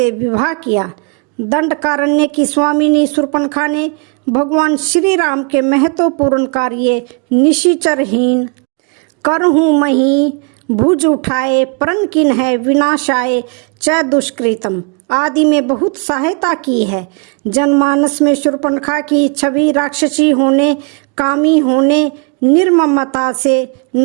विवाह किया। दंडकारण्य की स्वामिनी शूर्पणखा ने भगवान श्री राम के महत्वपूर्ण कार्य निशिचरहीन करहूँ मही भुज उठाए प्रण किन है विनाशाय च दुष्कृतम आदि में बहुत सहायता की है। जनमानस में शूर्पणखा की छवि राक्षसी होने, कामी होने, निर्ममता से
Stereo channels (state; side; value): quieter; left; 35.7 dB